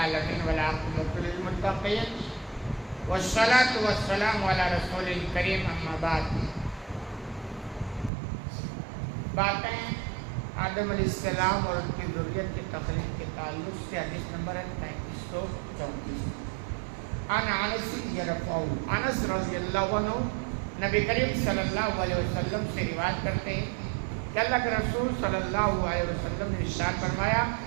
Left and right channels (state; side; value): drops out; left; at 8.1 s